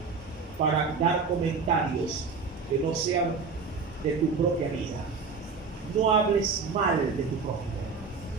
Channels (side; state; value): left; quieter; 5.0 dB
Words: para dar comentarios que no sean de tu propia vida. No hables mal de tu prójimo.